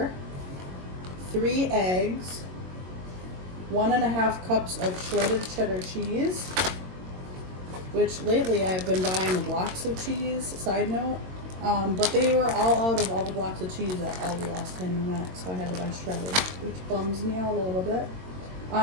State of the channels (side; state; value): left; late; 22 ms